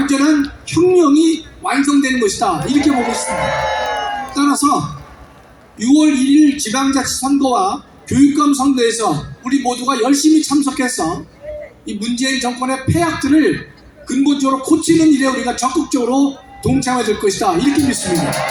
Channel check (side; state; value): both; identical; correlation 1.00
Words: 혁명이 완성되는 것이다 이렇게 보고 있습니다. 따라서 6월 1일 지방자치선거와 교육감 선거에서 우리 모두가 열심히 참석해서 이 문재인 정권의 폐악들을 근본적으로 고치는 일에 우리가 적극적으로 동참해야 될 것이다 이렇게 믿습니다.